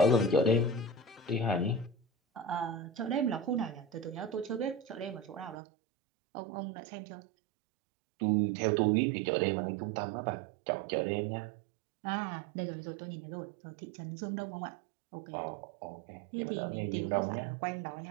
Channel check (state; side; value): drops out; left; at 5.6 s